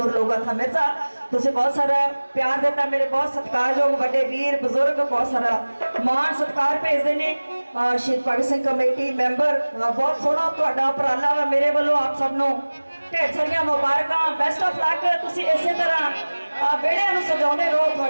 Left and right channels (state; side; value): inverted; both; correlation -1.00